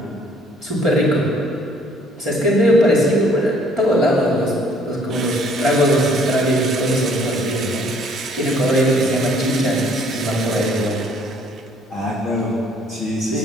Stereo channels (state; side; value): normal; both; correlation 0.60